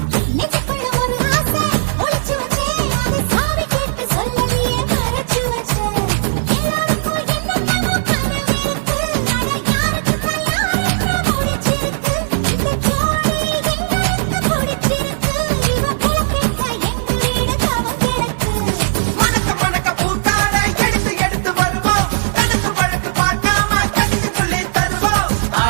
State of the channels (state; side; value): silent; left; 68 dB below the other